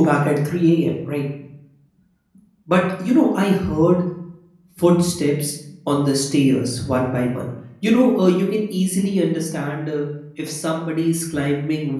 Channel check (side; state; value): both; identical; correlation 1.00